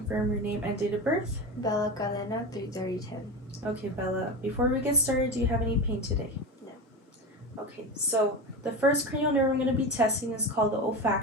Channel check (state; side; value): normal; both; correlation 0.23